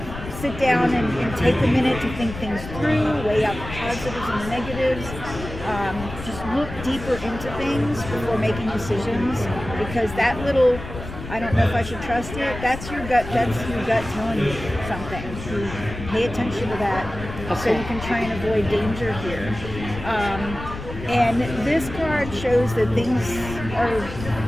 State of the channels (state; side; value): noise; left; rumble, 10 dB below the sound